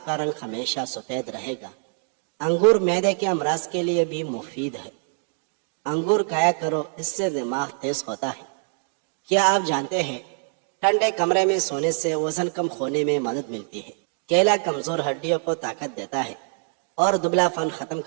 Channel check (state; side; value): silent; left; 62 dB below the other